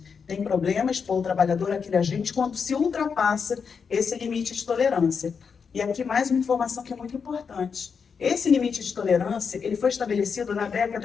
Tem problema expor o trabalhador àquele agente quando se ultrapassa esse limite de tolerância. E aqui mais uma informação que é muito importante. Esse limite de tolerância, ele foi estabelecido na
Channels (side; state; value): right; quieter; 6.0 dB